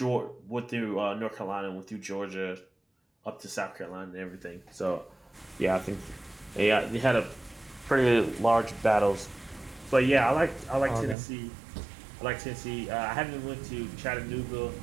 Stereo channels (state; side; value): drops out; left; at 11.2 s